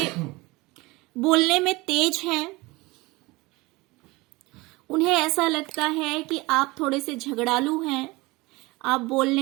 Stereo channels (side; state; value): left; quieter; 22.5 dB